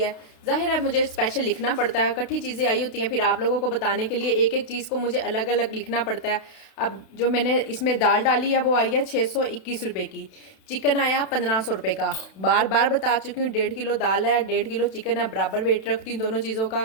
है। ज़ाहिर है मुझे स्पेशल लिखना पड़ता है, इकट्ठी चीज़ें आई होती हैं, फिर आप लोगों को बताने के लिए एक एक चीज़ को मुझे अलग अलग लिखना पड़ता है। अब जो मैंने इसमें दाल डाली है वो आई है 621 रुपये की, चिकन आया 1500 रुपये का। बार बार बता चुकी हूँ 1.5 किलो दाल है, 1.5 किलो चिकन है, बराबर वेट रखती हूँ दोनों चीज़ों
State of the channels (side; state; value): right; late; 32 ms